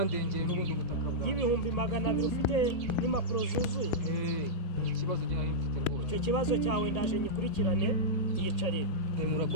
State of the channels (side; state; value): right; late; 1.8 ms